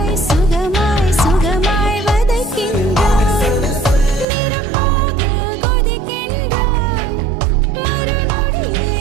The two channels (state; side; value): drops out; left; at 4.2 s